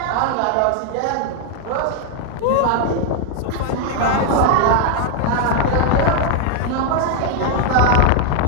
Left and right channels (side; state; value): both; different; correlation 0.00